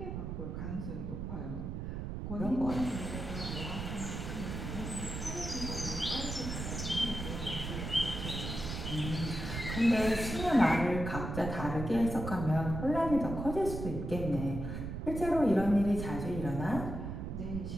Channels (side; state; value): right; noise; rumble, 5 dB below the sound